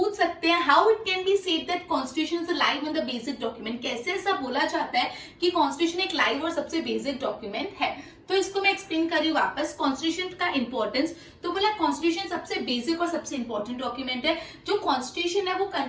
सकते हैं how it can be said that constitution is live and the basic document. कैसे ऐसा बोला जाता है कि कॉन्स्टिट्यूशन एक लाइव और सबसे बेसिक डॉक्यूमेंट है? तो इसको मैं एक्सप्लेन कर रही हूँ वापस। कॉन्स्टिट्यूशन का इंपॉर्टेंस, तो बोला कॉन्स्टिट्यूशन सबसे बेसिक और सबसे इंपॉर्टेंट डॉक्यूमेंट है। जो कॉन्स्टिट्यूशन है वो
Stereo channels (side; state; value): both; identical; correlation 1.00